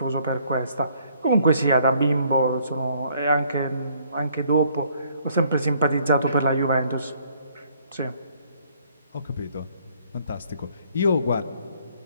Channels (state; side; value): inverted; both; correlation -0.64